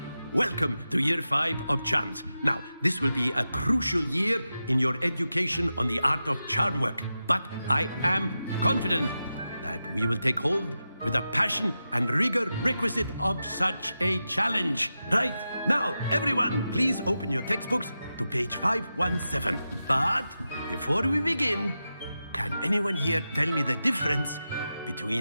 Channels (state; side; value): inverted; both; correlation -0.91